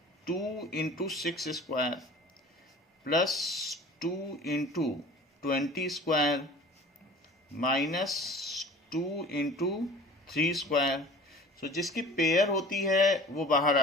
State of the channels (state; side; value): normal; both; correlation 0.43